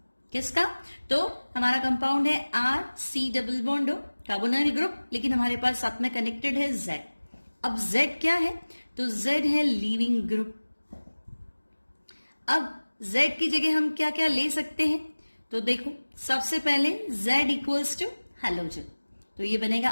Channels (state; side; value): inverted; both; correlation -1.00